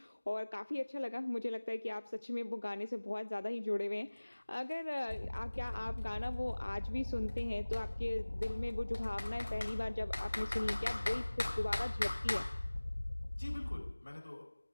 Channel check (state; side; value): inverted; both; correlation -1.00